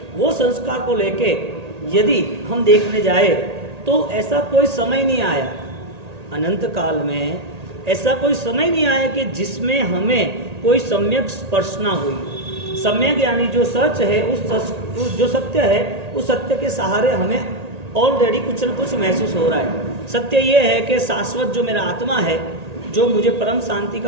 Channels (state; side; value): late; left; 1.8 ms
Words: वो संस्कार को लेके यदि हम देखने जाए तो ऐसा कोई समय नहीं आया, अनंत काल में ऐसा कोई समय नहीं आया कि जिसमें हमें कोई सम्यक स्पर्श ना हुई। सम्यक यानी जो सच है, जो सत्य है, उस सत्य के सहारे हमें ऑलरेडी कुछ न कुछ महसूस हो रहा है। सत्य ये है कि शाश्वत जो मेरा आत्मा है, जो मुझे परम शांति का